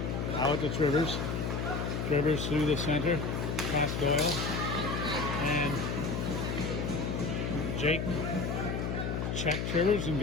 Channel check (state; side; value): noise; left; hum, 1 dB below the sound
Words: Howitt to Trivers. Trivers through the center. Past Doyle. And Jake checked Trivers and